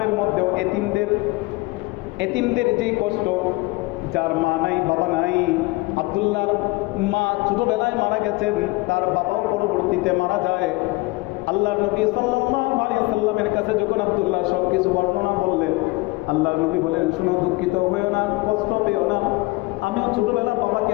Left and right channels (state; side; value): quieter; right; 23.1 dB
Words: মধ্যেও এতিমদের যে কষ্ট, যার মা নাই, বাবা নাই, আব্দুল্লাহর মা ছোটবেলায় মারা গেছেন, তার বাবাও পরবর্তীতে মারা যায়। আল্লাহর নবী সাল্লাল্লাহু আলাইহি ওয়াসাল্লামের কাছে যখন আব্দুল্লাহ সবকিছু বর্ণনা বললেন, আল্লাহর নবী বলেন, শোনো, দুঃখিত হয়েও না, কষ্ট পেও না, আমিও ছোটবেলা বাবাকে